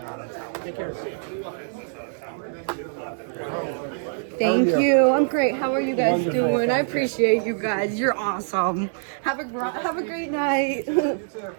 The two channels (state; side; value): silent; left; digital silence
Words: Thank How are you. I'm great. How are you guys Wonderful. doing? I appreciate you guys. You're awesome. Have a great night.